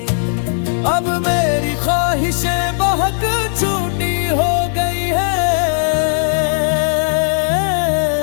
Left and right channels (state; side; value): silent; right; 59 dB below the other